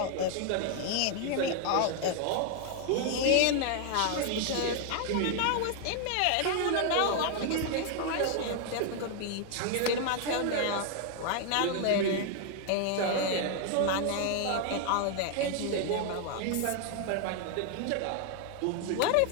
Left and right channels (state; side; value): different; both; correlation 0.00